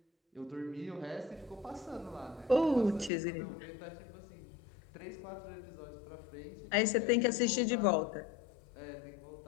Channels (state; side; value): drops out; right; at 3.1 s